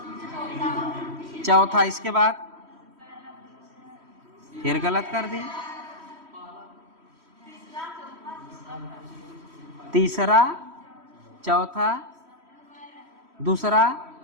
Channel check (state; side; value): late; left; 3.1 ms